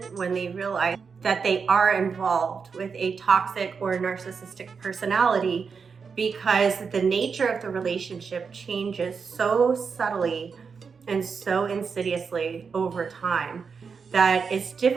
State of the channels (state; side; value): quieter; left; 5.6 dB